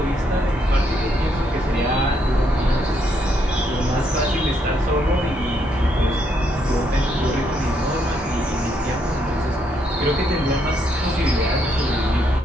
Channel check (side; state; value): both; normal; correlation 0.74